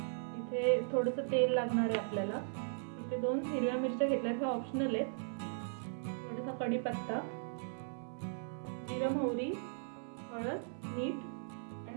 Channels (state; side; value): silent; left; 53 dB below the other